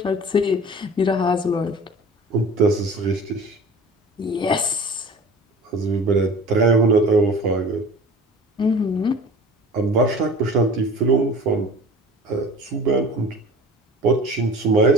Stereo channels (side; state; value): both; normal; correlation 0.42